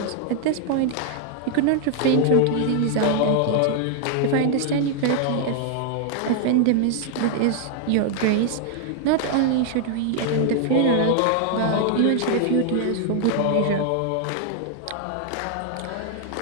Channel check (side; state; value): both; different; correlation 0.00